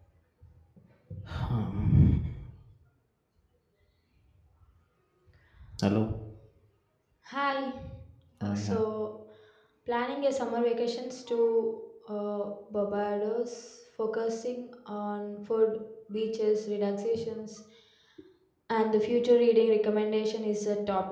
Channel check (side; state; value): both; identical; correlation 1.00